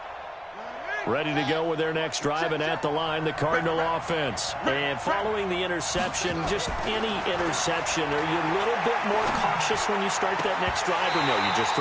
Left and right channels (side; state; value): both; identical; correlation 1.00